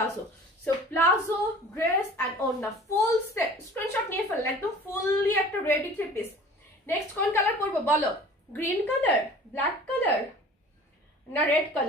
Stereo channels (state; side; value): normal; both; correlation 0.45